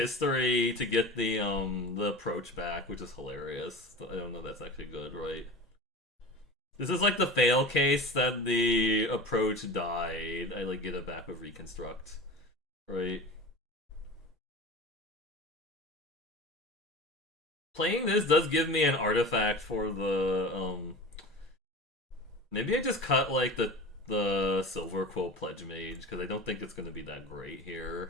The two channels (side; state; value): both; normal; correlation 0.33